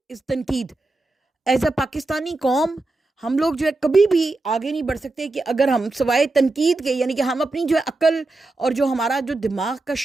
is تنقید. ایز اے پاکستانی قوم ہم لوگ جو ہے کبھی بھی آگے نہیں بڑھ سکتے کہ اگر ہم سوائے تنقید کے، یعنی کہ ہم اپنی جو ہے عقل اور جو ہمارا جو دماغ کا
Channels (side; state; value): left; quieter; 3.1 dB